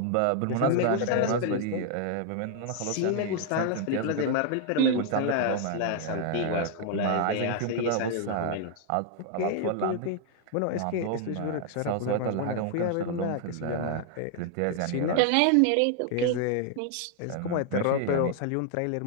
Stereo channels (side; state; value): both; different; correlation 0.00